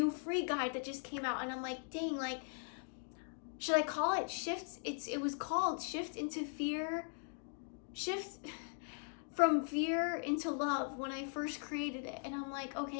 free guide that just came out, and I'm like, dang, like, should I call it shift? It was called Shift into Fear, Shift from Fear into Love when I first created it. And I'm like,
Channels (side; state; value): right; silent; 51 dB below the other